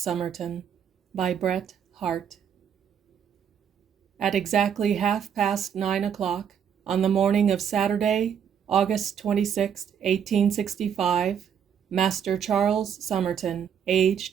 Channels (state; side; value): quieter; left; 8.2 dB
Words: Summerton by Bret Harte. At exactly 9:30 on the morning of Saturday, August 26, 1865, Master Charles Summerton,